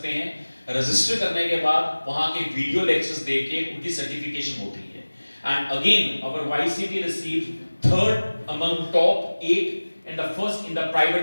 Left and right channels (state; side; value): inverted; both; correlation -1.00